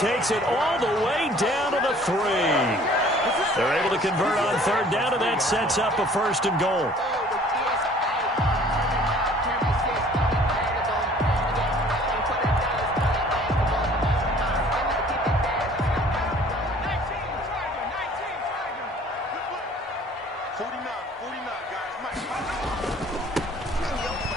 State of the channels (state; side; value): normal; both; correlation 0.53